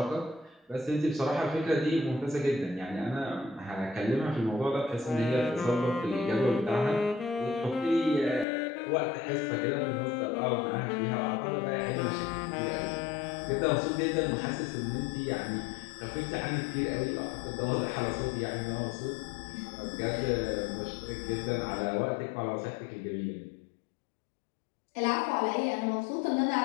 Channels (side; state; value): right; drops out; at 8.5 s